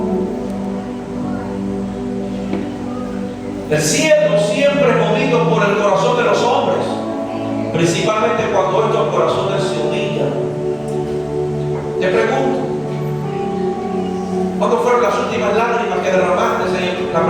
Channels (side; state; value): both; identical; correlation 1.00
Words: El cielo siempre es movido por el corazón de los hombres, principalmente cuando estos corazones se humillan. Te pregunto, ¿cuándo fueron las últimas lágrimas que derramaste en la